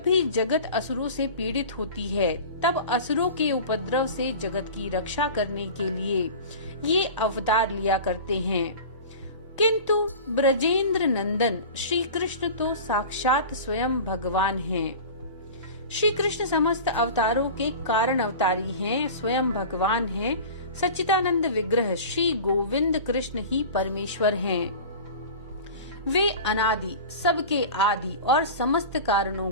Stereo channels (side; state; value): both; inverted; correlation -0.35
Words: भी जगत असुरों से पीड़ित होती है, तब असुरों के उपद्रव से जगत की रक्षा करने के लिए ये अवतार लिया करते हैं। किंतु ब्रजेंद्र नंदन श्री कृष्ण तो साक्षात स्वयं भगवान हैं। श्री कृष्ण समस्त अवतारों के कारण अवतारी हैं, स्वयं भगवान हैं। सच्चिदानंद विग्रह श्री गोविंद कृष्ण ही परमेश्वर हैं। वे अनादि, सबके आदि और समस्त कारणों